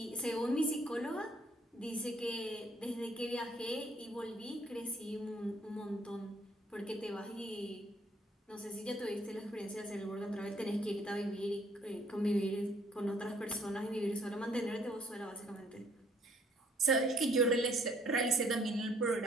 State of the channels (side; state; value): both; normal; correlation 0.63